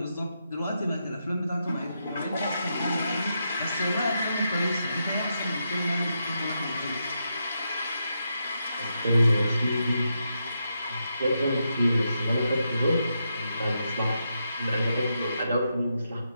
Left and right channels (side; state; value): both; inverted; correlation -0.84